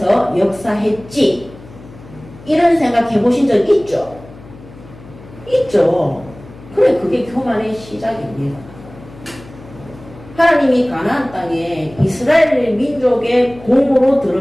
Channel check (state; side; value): noise; left; hum, 19 dB below the sound